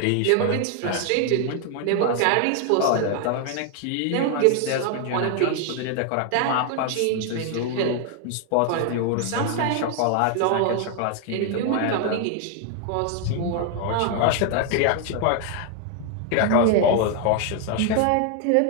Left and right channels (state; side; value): different; both; correlation 0.00